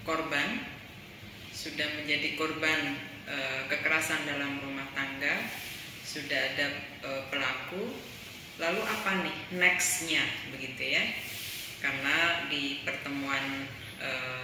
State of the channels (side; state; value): both; identical; correlation 1.00